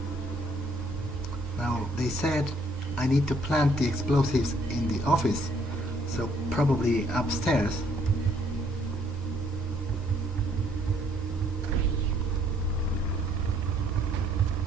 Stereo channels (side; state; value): both; normal; correlation 0.65